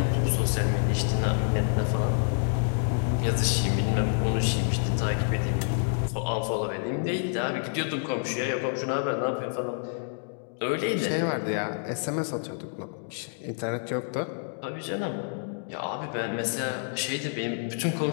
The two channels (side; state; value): right; silent; digital silence